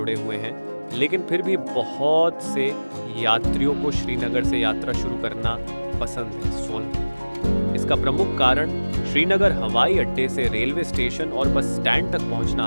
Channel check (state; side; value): inverted; both; correlation -1.00